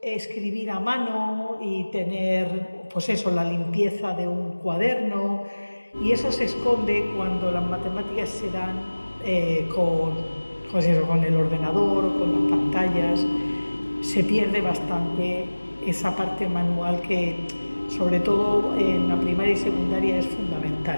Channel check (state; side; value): inverted; both; correlation -1.00